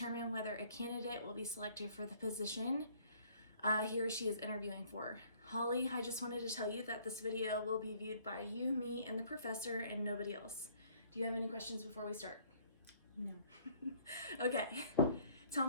whether a candidate will be selected for the position he or she is interviewing for. Holly, I just wanted to tell you that this video will be viewed by you, me, and the professor, and nobody else. Do you have any questions before we start? No. Okay, tell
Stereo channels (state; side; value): inverted; both; correlation -0.60